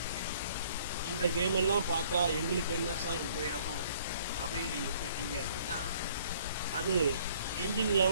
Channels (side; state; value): both; inverted; correlation -0.58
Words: இந்த கேம் எல்லாம் பார்த்தா எங்களுக்கு என்ன சார் உபயோகம் அப்படின்னு நீங்கள் கேட்டீங்க அப்படின்னா, அது என்ஜின்